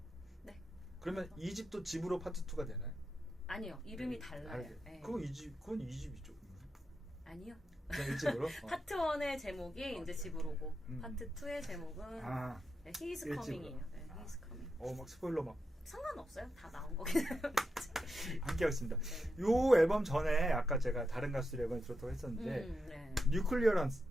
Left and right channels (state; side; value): normal; both; correlation 0.87